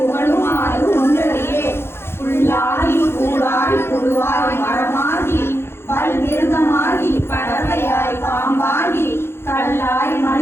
ஒன்றறியே, புல்லாகி கூடாய் புழுவாய் மரமாகி பல் மிருகமாகி பறவையாய் பாம்பாகி கல்லாய்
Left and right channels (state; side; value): late; right; 0.12 ms